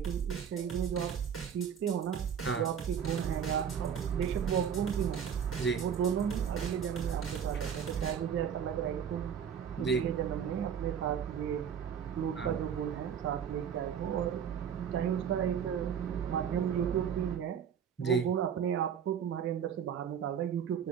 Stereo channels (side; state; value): left; quieter; 7.9 dB